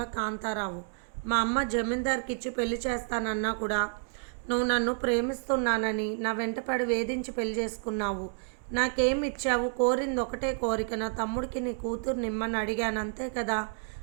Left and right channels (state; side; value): silent; left; 58 dB below the other